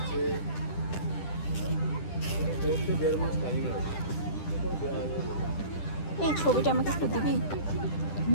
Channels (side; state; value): right; late; 10 ms